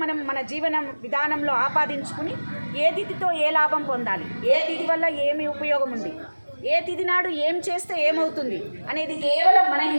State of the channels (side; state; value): both; inverted; correlation -1.00